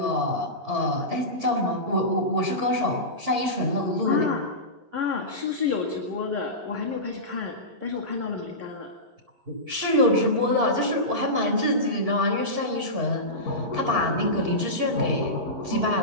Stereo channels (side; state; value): left; late; 11 ms